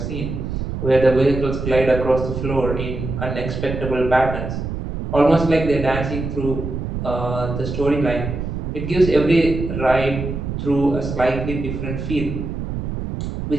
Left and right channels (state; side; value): noise; right; rumble, 5 dB below the sound